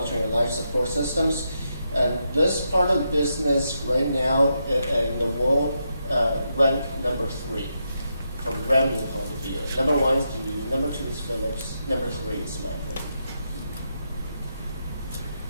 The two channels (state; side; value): inverted; both; correlation -0.83